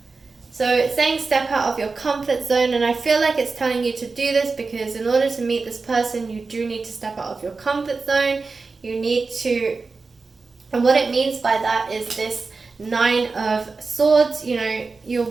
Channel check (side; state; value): left; quieter; 4.2 dB